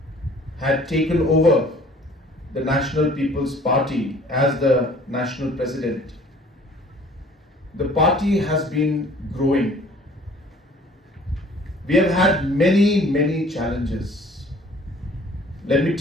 had taken over the National People's Party as the national president, the party has been growing. We have had many, many challenges. Let me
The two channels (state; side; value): normal; both; correlation 0.52